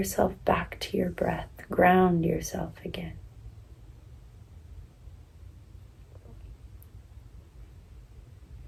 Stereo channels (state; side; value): identical; both; correlation 1.00